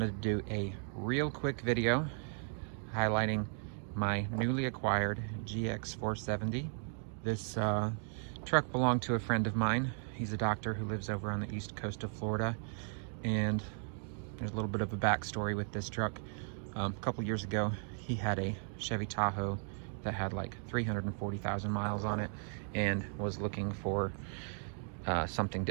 to do a real quick video highlighting my newly acquired GX470. This truck belonged to a friend of mine. He's a doctor who lives over on the east coast of Florida, and there's a little bit of a backstory with this truck. A couple years ago, he had a Chevy Tahoe that had like 340,000 miles on it and was looking for something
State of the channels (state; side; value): silent; left; 54 dB below the other